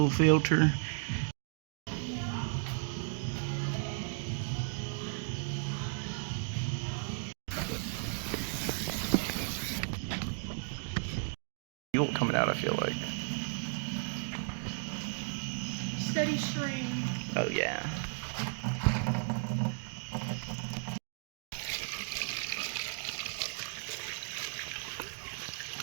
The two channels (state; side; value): silent; left; digital silence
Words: filter. Fuel coming out, I feel like. Steady stream. Oh yeah.